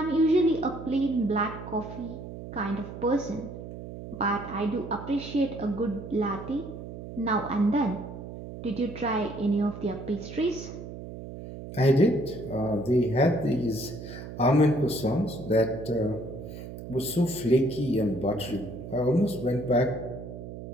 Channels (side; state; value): right; noise; hum, 11 dB below the sound